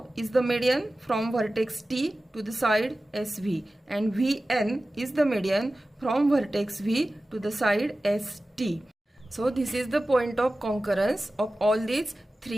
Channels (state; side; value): normal; both; correlation 0.96